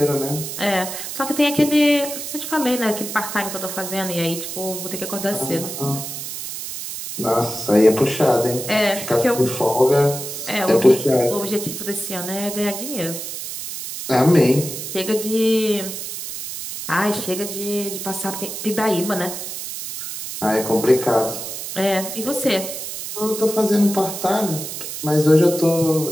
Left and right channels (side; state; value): right; noise; hiss, 7 dB below the sound